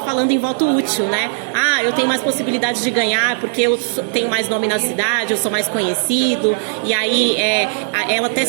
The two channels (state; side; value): silent; left; digital silence